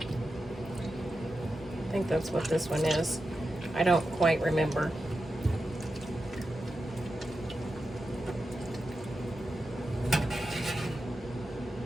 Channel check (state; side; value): normal; both; correlation 0.90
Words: I think that's what this one is. I don't quite remember.